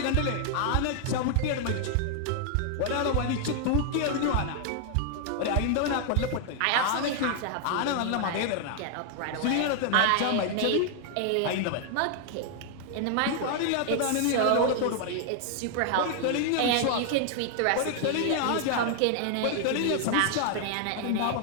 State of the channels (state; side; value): different; both; correlation 0.00